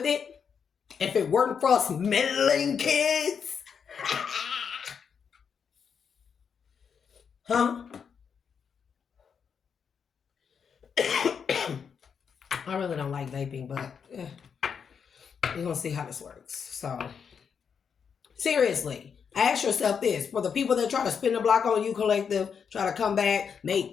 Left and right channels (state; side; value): quieter; right; 6.8 dB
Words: it? If it weren't for us meddling kids? Huh? I really don't like vaping, but we're going to see how this works. So, seriously, ask yourself this. For the people that try to spin the block on you, collective, try to come back, make